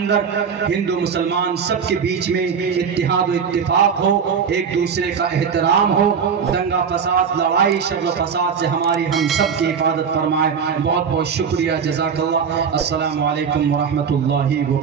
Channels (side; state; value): left; quieter; 6.6 dB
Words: ہندو مسلمان سب کے بیچ میں اتحاد و اتفاق ہو، ایک دوسرے کا احترام ہو، دنگا فساد، لڑائی، شر و فساد سے ہماری ہم سب کی حفاظت فرمائے۔ بہت بہت شکریہ، جزاک اللہ۔ السلام علیکم ورحمۃ اللہ